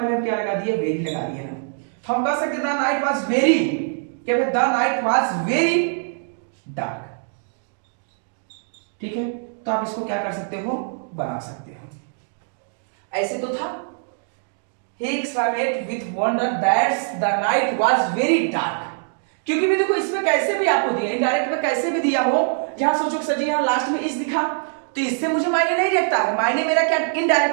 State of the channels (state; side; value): silent; left; 64 dB below the other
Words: हम क्या लगा दिए, वेरी लगा दिए ना। तो हम कह सकते द नाइट वाज वेरी, क्या the night was very dark. ठीक है, तो आप इसको क्या कर सकते हो, बना सकते हो। ऐसे तो था, he exclaimed with wonder that the night was very dark। क्योंकि भी देखो इसमें कैसे भी आपको दिया, इनडायरेक्ट में कैसे भी दिया हो, जहां सोचो कि सर जी यहाँ लास्ट में इस दिखा तो इससे मुझे मायने नहीं रखता है। मायने मेरा क्या,